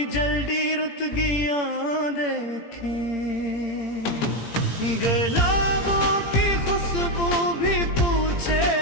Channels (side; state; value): right; late; 17 ms